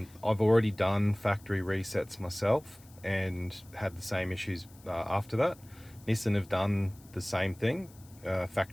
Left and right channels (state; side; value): noise; left; hiss, 25 dB below the sound